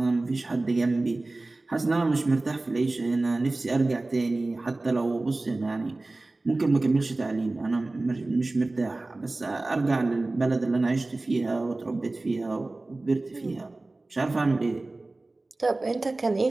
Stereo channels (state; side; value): quieter; left; 3.0 dB